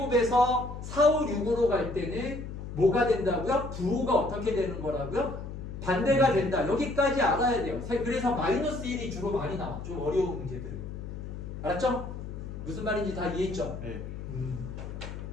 4, 5, 6으로 갈 때는 뭐가 된다고요? 부호가 어떻게 되는 거라고요? 반대가 된다. 여기까지 알아야 돼요. 그래서 마이너스 1이 주로 많이 나와. 좀 어려운 문제들은. 알았죠? 무슨 말인지 다 이해했죠? 네.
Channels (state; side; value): noise; left; hum, 9 dB below the sound